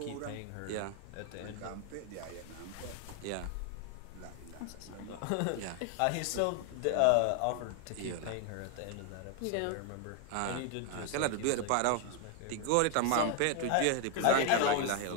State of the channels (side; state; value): both; different; correlation 0.01